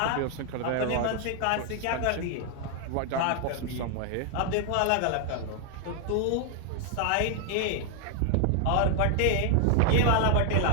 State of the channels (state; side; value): different; both; correlation 0.00